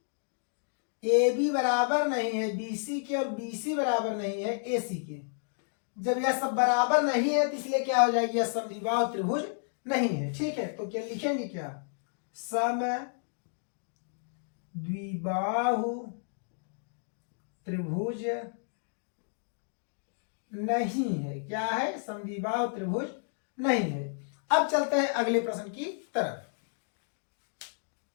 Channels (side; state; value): right; silent; digital silence